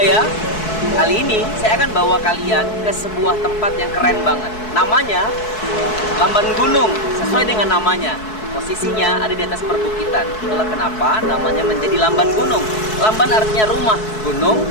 kali ini saya akan bawa kalian ke sebuah tempat yang keren banget. Namanya Lamban Gunung, sesuai dengan namanya. Posisinya ada di atas perbukitan. Itulah kenapa namanya menjadi Lamban Gunung. Lamban artinya rumah, gunung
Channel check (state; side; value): late; right; 4.6 ms